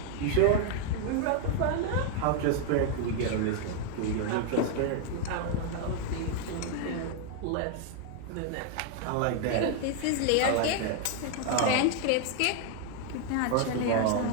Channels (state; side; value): different; both; correlation 0.00